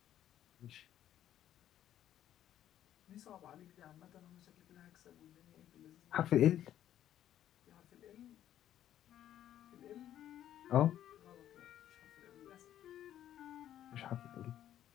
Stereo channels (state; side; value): quieter; right; 11.5 dB